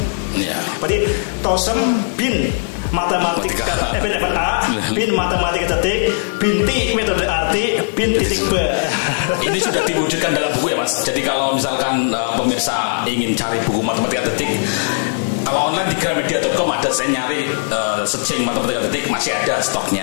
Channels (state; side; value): silent; right; digital silence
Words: Berarti TOSEM bin matematika bin level A, bin matematika detik, bin T metode arti, bin titik B. Ini sudah diwujudkan dalam buku ya Mas. Jadi kalau misalkan pemirsa ingin cari buku matematika detik, kalau online di gramedia.com ada, saya nyari searching matematika detik, masih ada